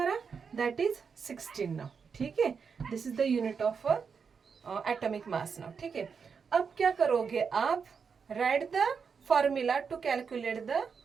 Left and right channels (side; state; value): left; quieter; 6.0 dB